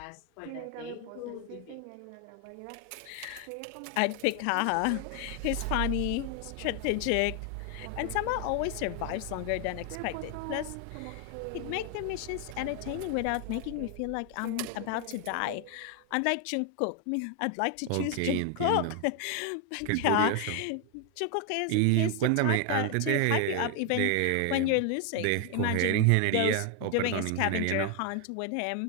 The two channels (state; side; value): different; both; correlation 0.01